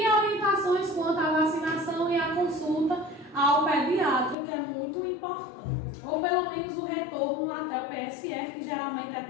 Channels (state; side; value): drops out; right; at 4.4 s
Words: orientações quanto à vacinação e à consulta ao pediatra, que é muito importante. Ou pelo menos o retorno até o PSF, que geralmente é